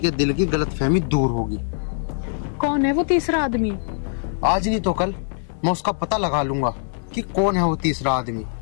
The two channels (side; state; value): right; silent; digital silence